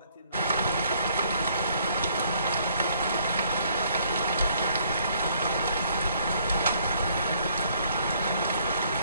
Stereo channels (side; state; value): both; inverted; correlation -0.65